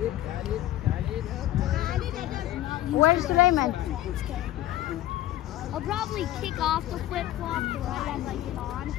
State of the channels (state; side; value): quieter; right; 14.1 dB